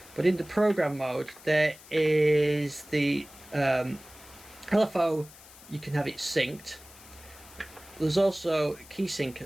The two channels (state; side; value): noise; left; hiss, 21 dB below the sound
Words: but in the program mode there is the LFO. You can have it synced. There's also key sync